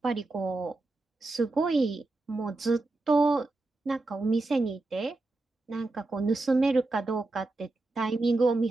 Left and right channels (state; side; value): quieter; left; 3.1 dB